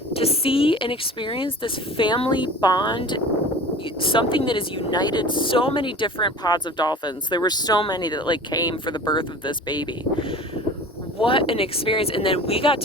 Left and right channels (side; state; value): both; normal; correlation 0.40